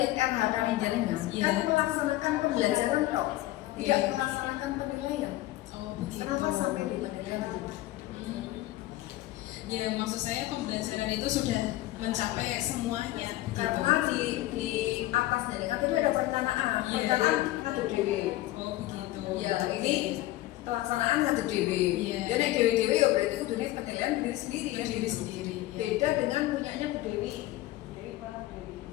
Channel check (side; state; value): right; quieter; 16.5 dB